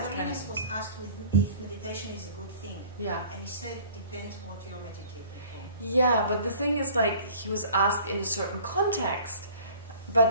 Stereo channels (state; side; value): inverted; both; correlation -0.49